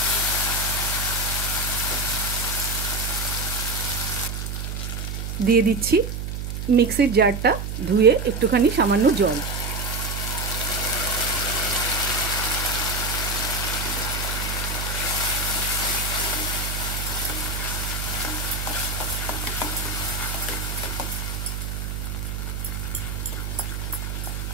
দিয়ে দিচ্ছি মিক্সির জারটা ধুয়ে একটুখানি সামান্য জল।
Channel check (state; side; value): noise; right; hum, 4 dB below the sound